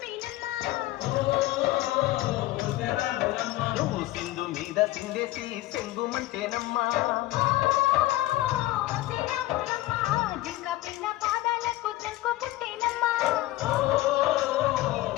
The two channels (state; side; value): quieter; right; 16.9 dB